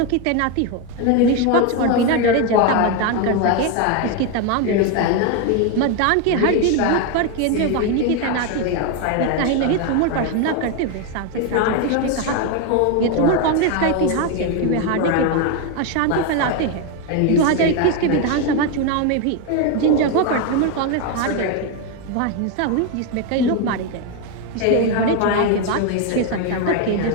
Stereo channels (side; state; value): both; different; correlation 0.02